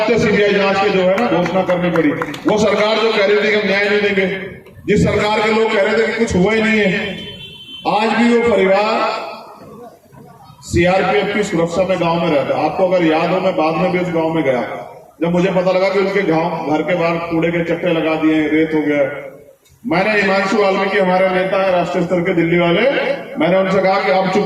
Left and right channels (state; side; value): identical; both; correlation 1.00